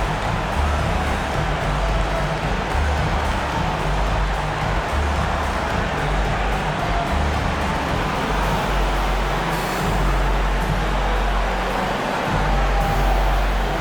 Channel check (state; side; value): identical; both; correlation 1.00